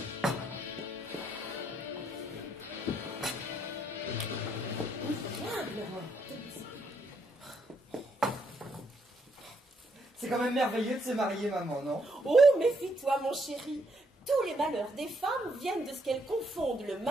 C'est quand même merveilleux de se marier, maman, non? Oh, méfie-toi, mon chéri. Tous les malheurs des femmes viennent de ce qu'elles confondent le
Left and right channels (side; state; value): both; normal; correlation 0.73